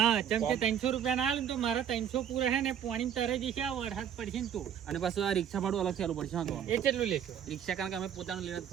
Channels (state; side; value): quieter; left; 9.1 dB